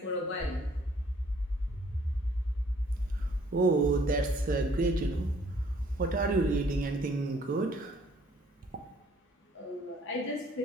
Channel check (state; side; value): normal; both; correlation 0.61